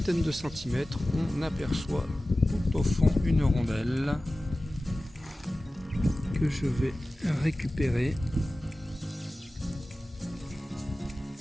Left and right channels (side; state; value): both; normal; correlation 0.96